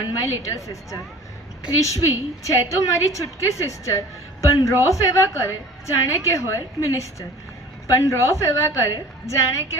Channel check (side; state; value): both; normal; correlation 0.43